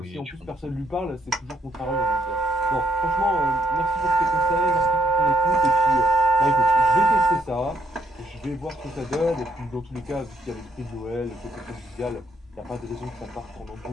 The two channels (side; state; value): both; normal; correlation 0.75